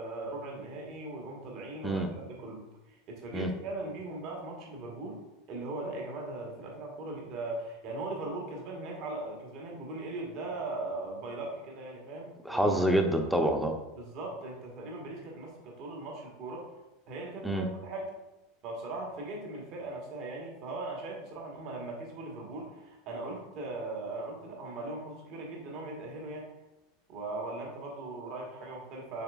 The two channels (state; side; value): normal; both; correlation 0.43